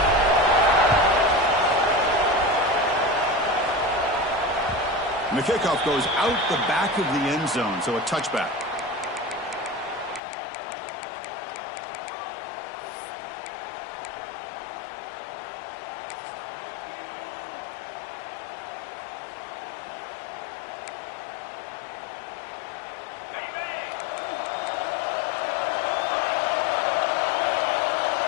And the kickoff goes out the back of the end zone, so a touchback.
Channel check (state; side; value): drops out; right; at 10.2 s